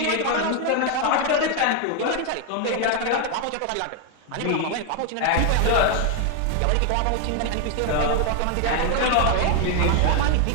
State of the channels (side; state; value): both; different; correlation 0.00